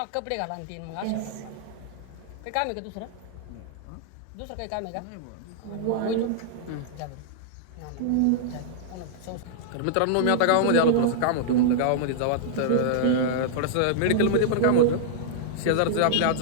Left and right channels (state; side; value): different; both; correlation -0.02